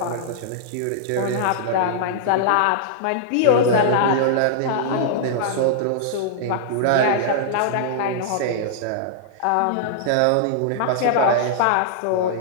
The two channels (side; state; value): both; different; correlation -0.02